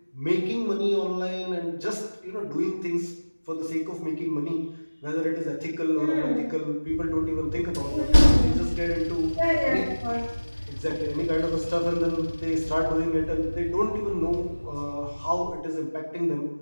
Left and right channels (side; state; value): both; inverted; correlation -1.00